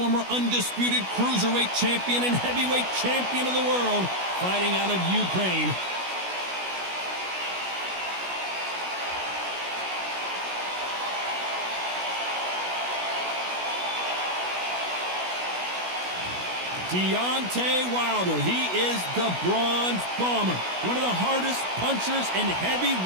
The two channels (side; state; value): left; late; 16 ms